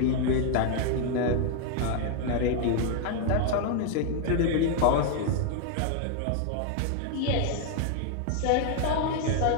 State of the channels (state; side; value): different; both; correlation 0.00